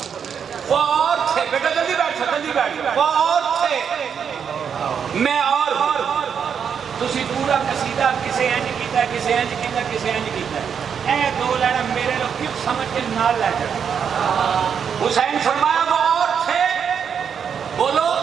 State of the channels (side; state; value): left; quieter; 7.3 dB